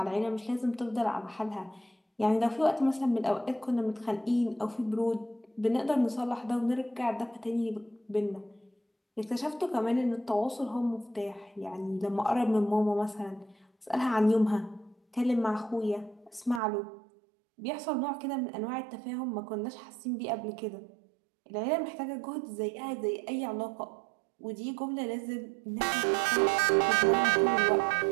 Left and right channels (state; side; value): drops out; left; at 16.6 s